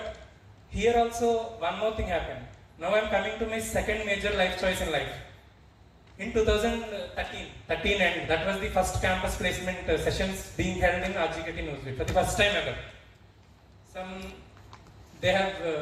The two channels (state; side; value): identical; both; correlation 1.00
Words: here also one more thing happened. Now I am coming to my second major life choice in life. In 2013, and that was the first campus placement sessions being held in RGKT Newsweek for the first time ever.